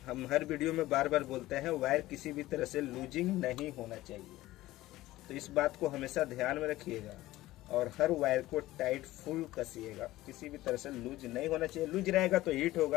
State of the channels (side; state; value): right; quieter; 16.8 dB